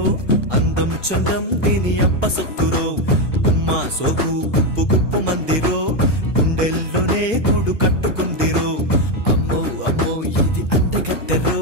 అందం చందం దీని అప్ప సత్తురో ఉమ్మా సోపు కుప్పు కుప్పు మందిరో గుండెల్లోనే గూడు కట్టుకుందిరో అమ్మో అమ్మో ఇది అందగత్తెరో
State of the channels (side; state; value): right; late; 1.0 ms